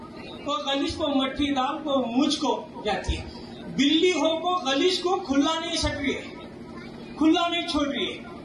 کو غلیظ کو مٹھی ڈال کو مجھ کو جاتی ہے. بلی ہو کو غلیظ کو کھلا نہیں سک رہی ہے، کھلا نہیں چھوڑ رہی ہے،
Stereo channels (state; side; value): identical; both; correlation 1.00